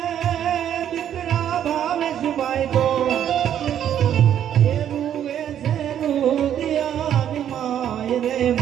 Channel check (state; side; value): quieter; left; 10.0 dB